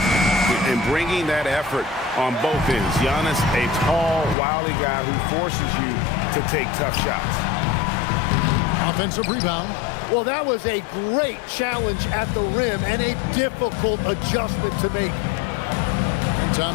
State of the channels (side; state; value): right; drops out; at 4.4 s